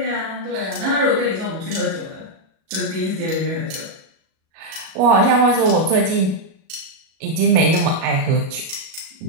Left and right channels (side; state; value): left; late; 37 ms